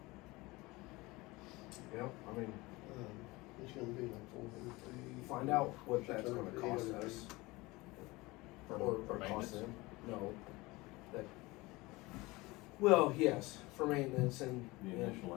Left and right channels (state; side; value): quieter; right; 22.0 dB